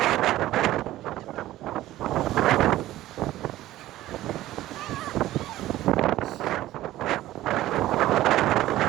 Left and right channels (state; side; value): quieter; left; 15.0 dB